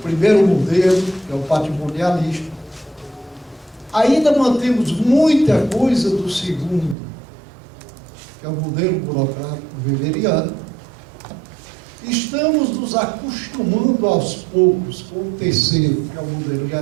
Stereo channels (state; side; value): drops out; left; at 7.0 s